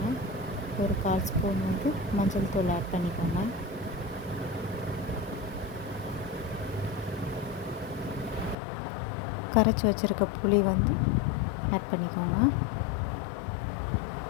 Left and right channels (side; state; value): right; drops out; at 8.6 s